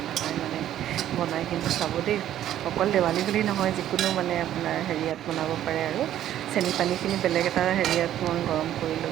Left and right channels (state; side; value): quieter; left; 11.9 dB